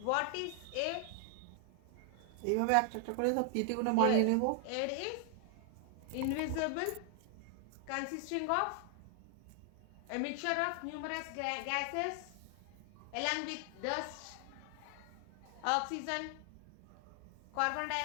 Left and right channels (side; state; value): both; different; correlation 0.00